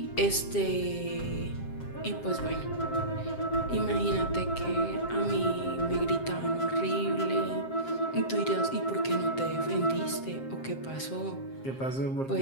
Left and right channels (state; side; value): late; right; 7.5 ms